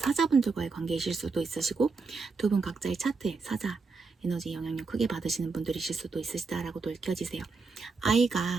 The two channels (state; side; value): quieter; left; 4.4 dB